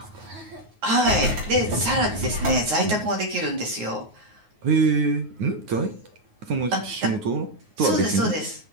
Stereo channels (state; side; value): late; left; 9.4 ms